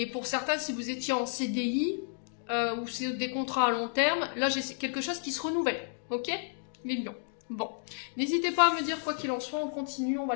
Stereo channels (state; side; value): silent; right; digital silence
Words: pour certains, si vous étiez en CDI ou c'est des contrats à long terme, là, j'ai quelque chose qui se renouvelle. Ok? Les lions. Bon. N'hésitez pas à me dire quoi qu'il en soit. On continue. On va